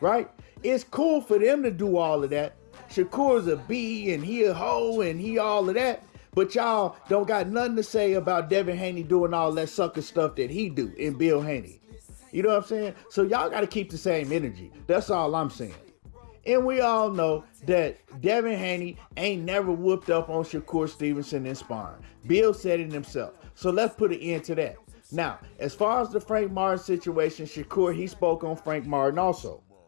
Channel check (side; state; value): right; silent; digital silence